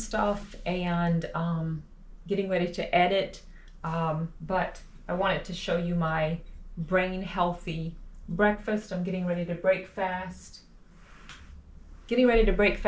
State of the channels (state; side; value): identical; both; correlation 1.00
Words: and getting ready to edit, but I wanted to show you my brain healthy breakfast. I'm getting ready to break fast.